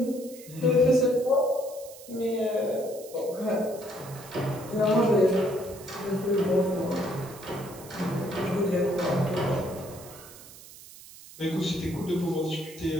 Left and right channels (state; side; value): noise; right; hiss, 18 dB below the sound